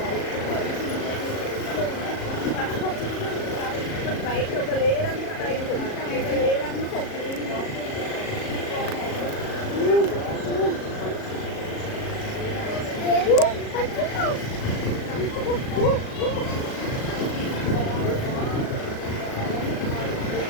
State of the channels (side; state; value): right; late; 37 ms